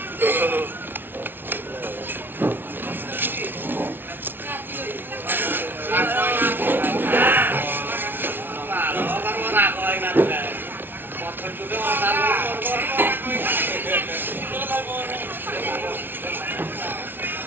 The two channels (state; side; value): late; left; 0.10 ms